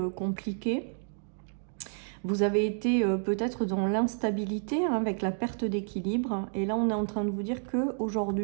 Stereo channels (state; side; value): silent; left; digital silence